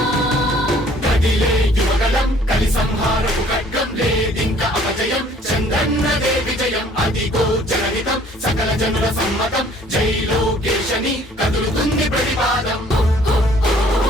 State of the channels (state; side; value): normal; both; correlation 0.57